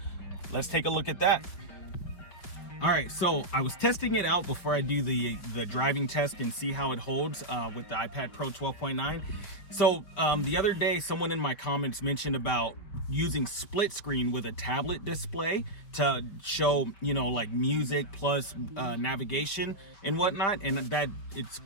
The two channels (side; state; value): right; late; 5.4 ms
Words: let's take a look at that. All right, so I was testing it out before I do the driving test and see how it holds with the iPad Pro 12.9. So the other day, someone in my comments mentioned about using split screen with a tablet display to show, like music plus navigation and whatnot. And that it's